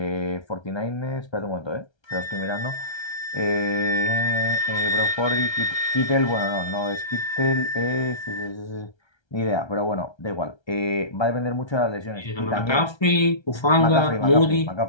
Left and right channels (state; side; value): late; right; 1.3 ms